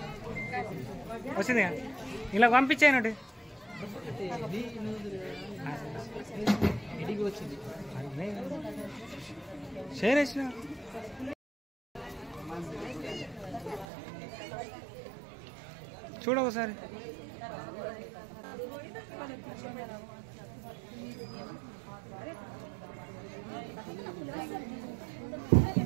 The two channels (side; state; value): left; drops out; at 13.9 s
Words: వచ్చింది ఇలా పంపించానండి షేర్ చేసిన చూడ ఒకసారి